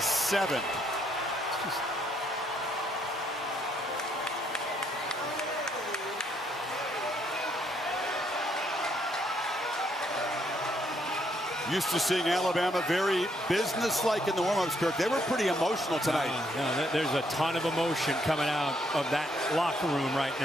Used to seeing Alabama very businesslike in the warm-ups, Kirk. They were pretty emotional tonight. There's a ton of emotion coming out of that locker room right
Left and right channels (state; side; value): normal; both; correlation 0.72